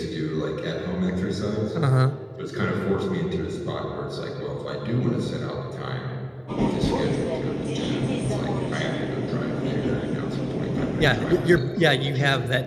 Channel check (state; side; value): identical; both; correlation 1.00